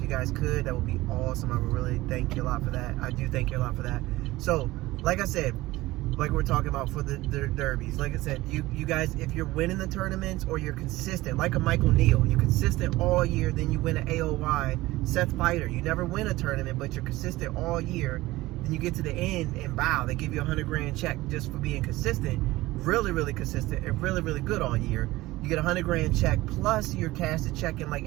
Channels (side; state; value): left; quieter; 18.5 dB